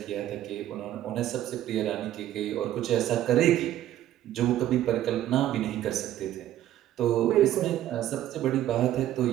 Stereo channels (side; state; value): left; quieter; 12.7 dB